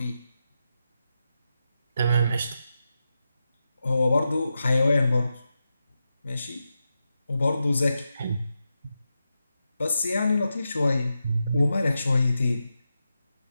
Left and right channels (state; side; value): inverted; both; correlation -0.88